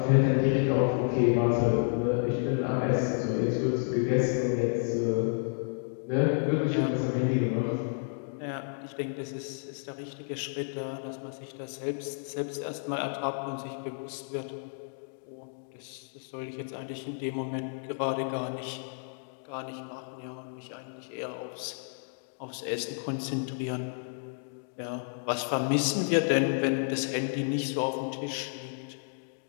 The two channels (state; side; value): silent; right; digital silence